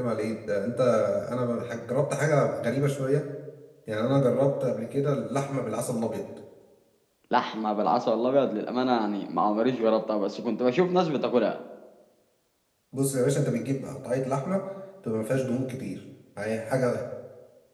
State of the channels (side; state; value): both; identical; correlation 1.00